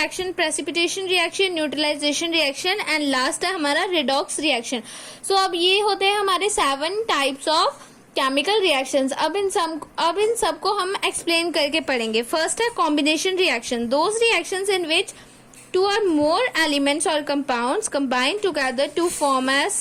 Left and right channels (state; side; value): identical; both; correlation 1.00